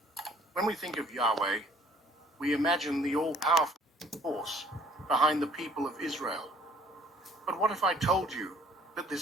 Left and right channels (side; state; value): both; normal; correlation 0.56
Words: When we think of Yahweh, we imagine the all-powerful force behind the people of Israel. But what if I told you that